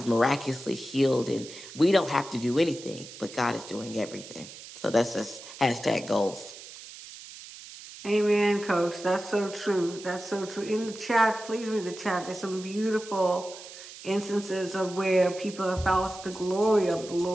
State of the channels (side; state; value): right; noise; hiss, 15 dB below the sound